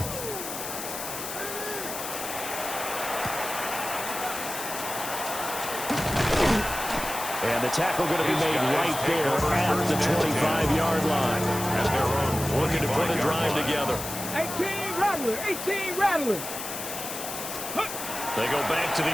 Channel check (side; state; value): left; noise; hiss, 7 dB below the sound